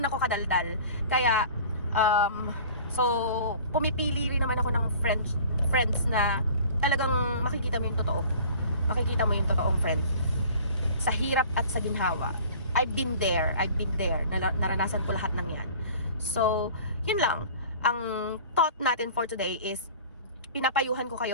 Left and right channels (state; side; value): inverted; both; correlation -0.45